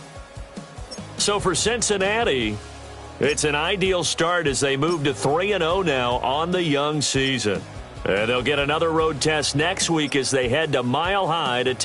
So for Cincinnati, it's an ideal start as they move to 3-0 now on the young season. And they'll get another road test next week as they head to Mile High to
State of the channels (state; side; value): identical; both; correlation 1.00